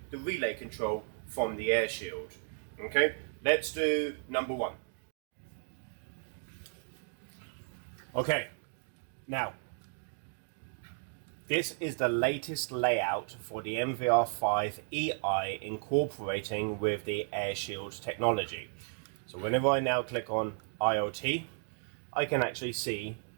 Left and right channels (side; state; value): left; silent; 55 dB below the other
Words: the relay control from the AirShield. Okay, let's do number one. Okay, now this is the latest layout for the NVR5 EI incorporating with the AirShield technology. So whenever I now click on IoT, I can actually see